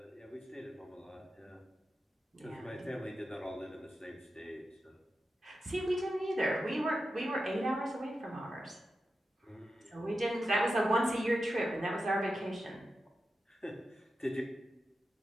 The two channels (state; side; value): normal; both; correlation 0.90